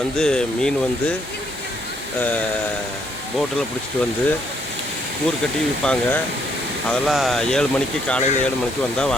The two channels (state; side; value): normal; both; correlation 0.70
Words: வந்து மீன் வந்து போட்டில் பிடிச்சிட்டு வந்து கூறு கட்டி விற்பாங்க. அதெல்லாம் 7 மணிக்கு, காலையில் 7 மணிக்கு வந்தால்